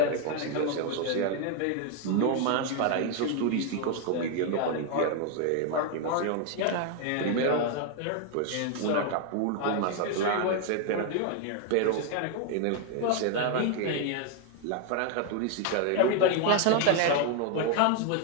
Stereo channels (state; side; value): different; both; correlation 0.00